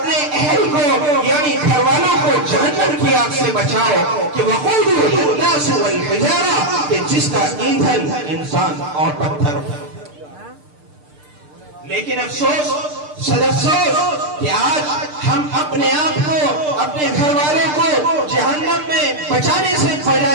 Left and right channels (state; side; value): late; left; 6.7 ms